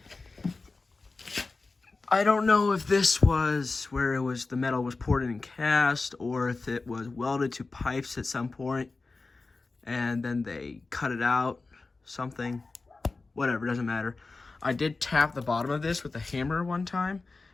I don't know if this was where the metal was poured in and cast, or if it was welded to pipes at some point and then they cut it out, something. Whatever, doesn't matter. I did tap the bottom of this with a hammer one time,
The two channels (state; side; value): quieter; right; 3.8 dB